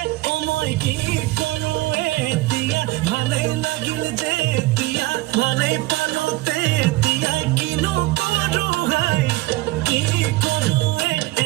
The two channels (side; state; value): left; quieter; 19.3 dB